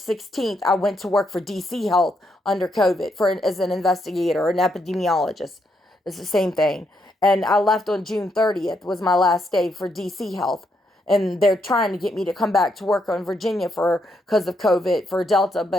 I went to work for DC Health under COVID as an investigator, an epidemiologist. It's the same thing. And I left on June 30th was my last day for DC Health. And they're trying to get me to come back to work on Virginia because of COVID for Delta,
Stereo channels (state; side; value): normal; both; correlation 0.78